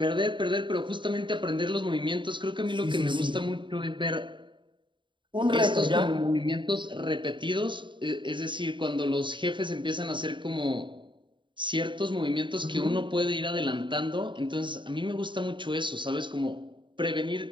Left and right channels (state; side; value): late; left; 0.23 ms